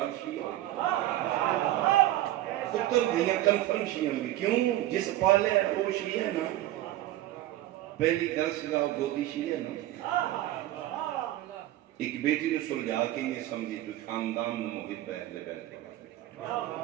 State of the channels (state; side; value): quieter; left; 14.8 dB